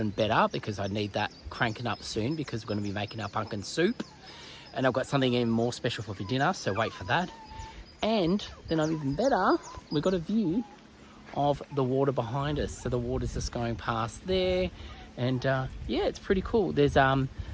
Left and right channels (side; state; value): both; identical; correlation 1.00